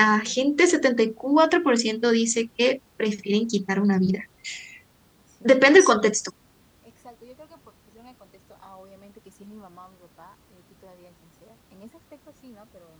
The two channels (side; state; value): both; identical; correlation 1.00